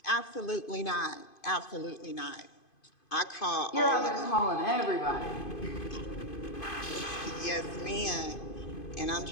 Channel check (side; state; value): right; late; 2.5 ms